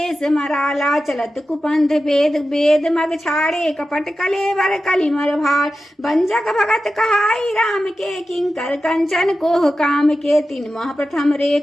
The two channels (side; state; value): both; normal; correlation 0.93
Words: मराला चलत कुपंथ वेद मग छाड़े कपट कलेवर कलिमर भार बंजक भगत कहाई राम के किंकर कंचन कोह काम के तीन माह प्रथम